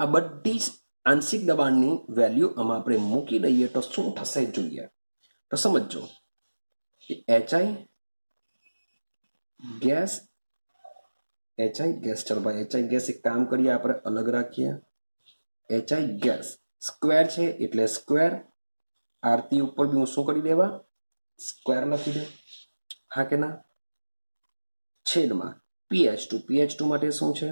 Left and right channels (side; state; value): both; inverted; correlation -1.00